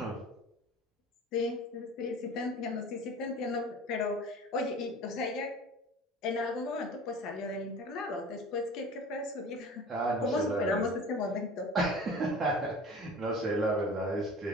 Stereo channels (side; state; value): both; normal; correlation 0.40